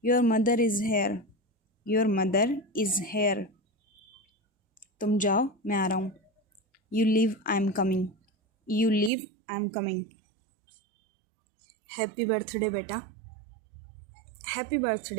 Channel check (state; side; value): drops out; left; at 9.1 s